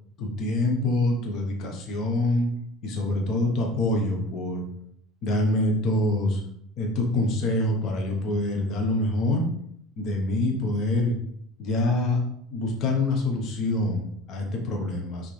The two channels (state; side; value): normal; both; correlation 0.41